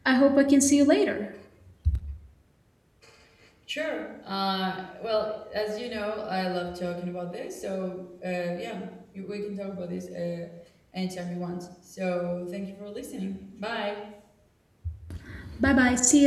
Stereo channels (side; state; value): both; identical; correlation 1.00